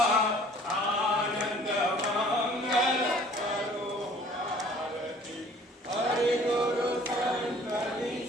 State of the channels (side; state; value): both; normal; correlation 0.53